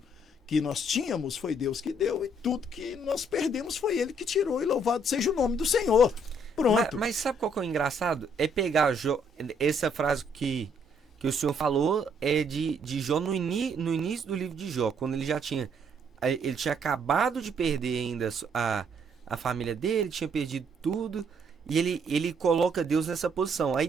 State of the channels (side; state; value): both; normal; correlation 0.68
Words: que nós tínhamos foi Deus que deu e tudo que nós perdemos foi Ele que tirou, e louvado seja o nome do Senhor. Pronto. Mas sabe qual que é o engraçado? É pegar essa frase que o senhor falou é de Jó no início do livro de Jó, quando ele tinha acabado de perder ainda a família dele, tinha perdido tudo, e ele coloca Deus nessa posição. Aí